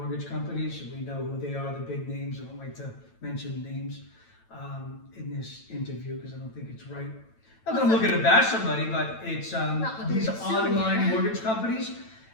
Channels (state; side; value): late; right; 9.0 ms